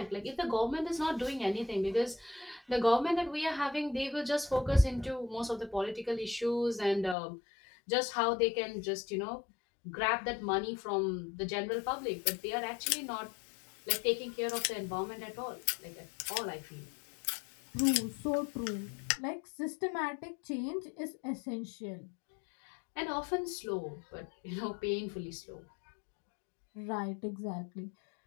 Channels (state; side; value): drops out; right; at 7.2 s